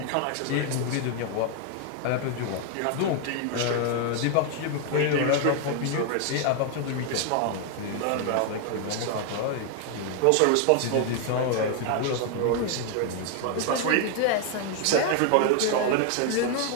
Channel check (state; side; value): different; both; correlation 0.00